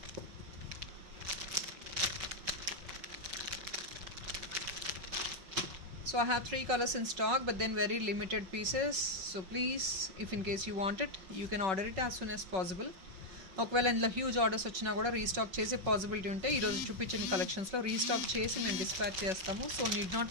So I have 3 colors in stock, but then very limited pieces. So please, if in case you want it, you can order it as soon as possible. ఒకవేళ ఇందులో huge orders వచ్చినా కూడా restock చేసే possibility ఉంటే ఈరోజు చూపించిన కలెక్షన్స్లో restock చేసి మేము డిస్పాచ్ చేస్తాము. So need not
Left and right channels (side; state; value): left; late; 5.4 ms